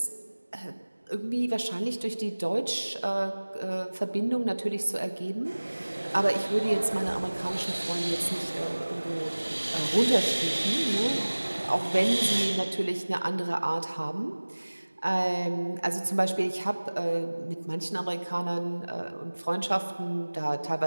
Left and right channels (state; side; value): inverted; both; correlation -1.00